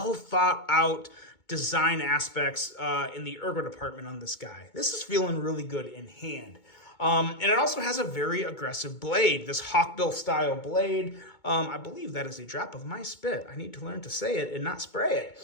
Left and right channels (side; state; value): right; late; 2.2 ms